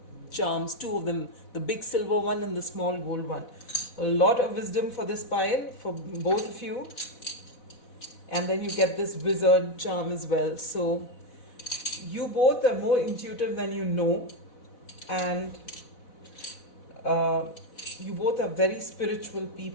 charms, two of them, the big silver one and the small gold one. A lot of wisdom for this pile, for both of you. And then you get this wizard charm as well. So you both are more intuitive than you know, and you both are very spiritual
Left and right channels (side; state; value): right; late; 4.0 ms